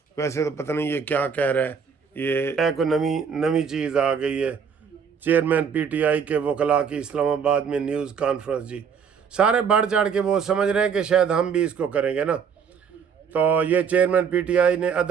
ویسے تو پتہ نہیں یہ کیا کہہ رہا ہے، یہ کوئی نئی چیز آ گئی ہے۔ چیئرمین پی ٹی آئی کے وکلاء کی اسلام آباد میں نیوز کانفرنس، جی سارے بڑھ چڑھ کے وہ سمجھ رہے ہیں کہ شاید ہم بھی اس کو کریں گے نا۔ تو یہ چیئرمین پی ٹی آئی نے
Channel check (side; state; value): left; quieter; 6.7 dB